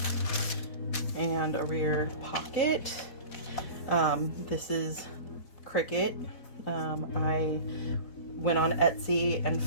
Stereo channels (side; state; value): right; late; 4.1 ms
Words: And a rear pocket. This is Cricut. I went on Etsy and